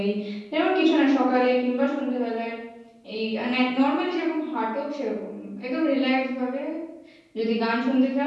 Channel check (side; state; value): both; identical; correlation 1.00